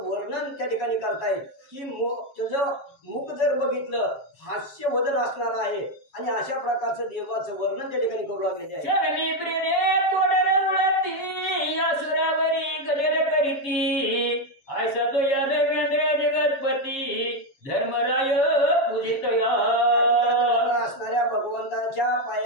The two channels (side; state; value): right; late; 7.4 ms